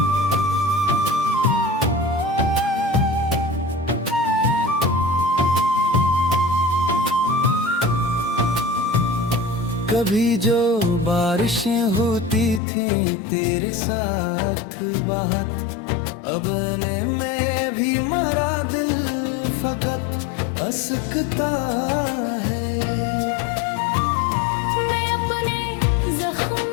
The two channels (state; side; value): drops out; right; at 12.6 s